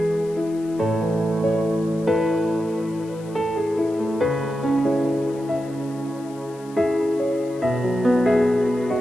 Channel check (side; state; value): left; noise; hiss, 25 dB below the sound